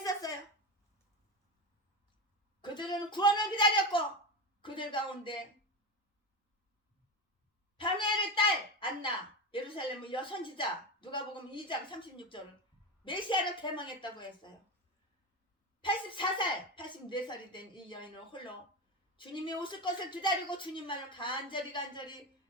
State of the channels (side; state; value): both; normal; correlation 0.20